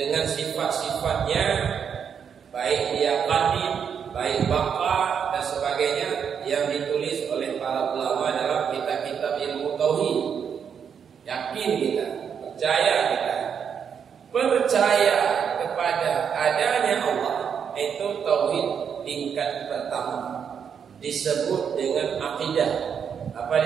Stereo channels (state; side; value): quieter; left; 7.3 dB